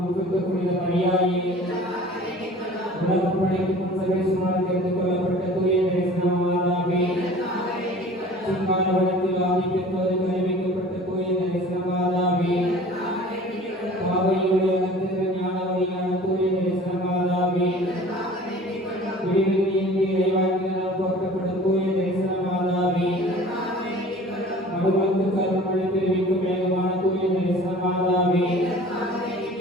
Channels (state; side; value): normal; both; correlation 0.45